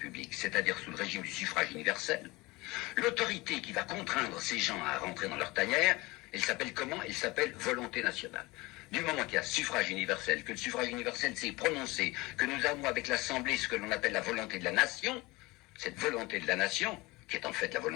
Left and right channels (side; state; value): right; quieter; 22.3 dB